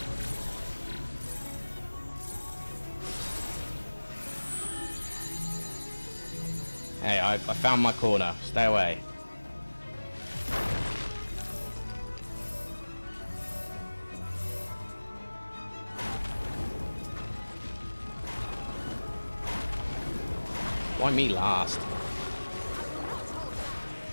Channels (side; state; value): both; inverted; correlation -1.00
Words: Hey, I found my corner. Stay away. Why me last?